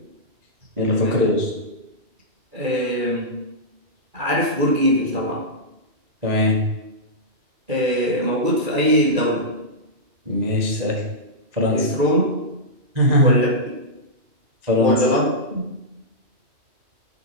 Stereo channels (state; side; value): late; left; 2.3 ms